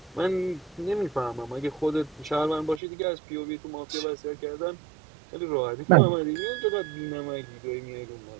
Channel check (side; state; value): left; drops out; at 2.8 s